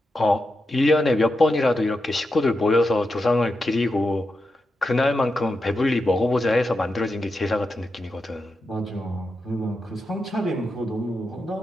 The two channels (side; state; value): both; normal; correlation 0.87